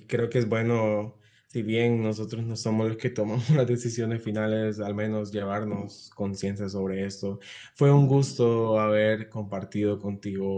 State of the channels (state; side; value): identical; both; correlation 1.00